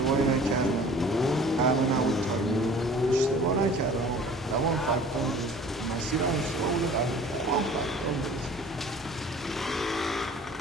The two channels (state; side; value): normal; both; correlation 0.47